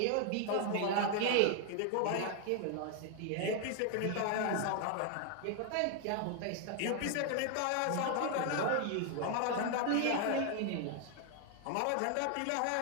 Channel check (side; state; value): both; different; correlation 0.00